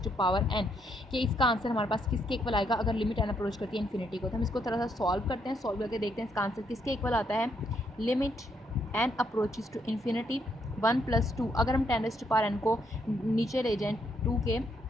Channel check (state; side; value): normal; both; correlation 0.74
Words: कि इसका आंसर हमारे पास किसके इक्वल आएगा अगर लिमिट n अप्रोच करती है इन्फिनिटी को। तो हम इसको थोड़ा सा सॉल्व करते हैं, सॉल्व करके देखते हैं इसका आंसर किसके इक्वल आता है। Limit n approaches to infinity 1 + 2, अगर हम 10⁻n को नीचे ले जाएँ 2 के,